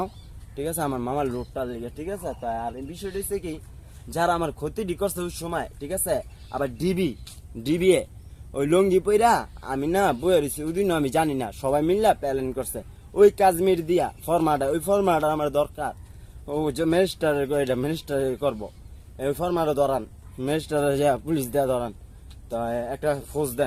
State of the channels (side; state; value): both; identical; correlation 1.00